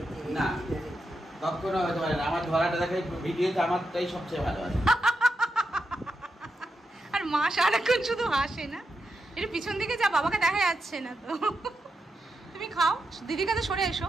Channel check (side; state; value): both; normal; correlation 0.86